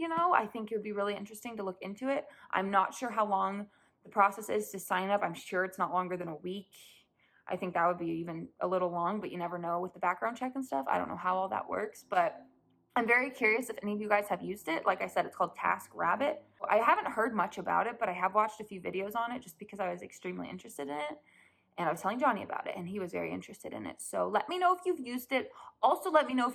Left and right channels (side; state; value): both; identical; correlation 1.00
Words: I think it would be really interesting to look into it. I'm not sure how long the process is to sign up. I'm sure it's not longer than a week. I think that would be even a little long, but you never know with the background check and stuff. I don't know how all that works, but I'm very curious if any of you guys have used it. Like I said, it's called TaskRabbit. I haven't heard much about it, but I have watched a few videos on it just because I was extremely interested in it. And I was telling Johnny about it, and he was very interested in it. So let me know if you've used it. Also, let me know